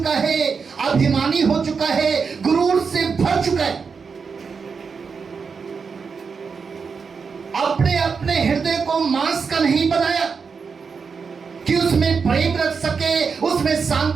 है, अभिमानी हो चुका है, गुरूर से भर चुका है। अपने अपने हृदय को मांस का नहीं बनाया कि उसमें प्रेम रख सके, उसमें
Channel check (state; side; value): quieter; left; 5.5 dB